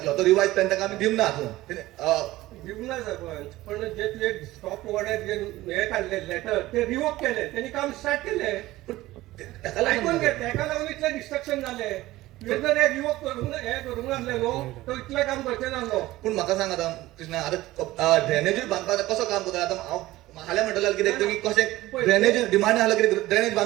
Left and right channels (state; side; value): quieter; left; 17.3 dB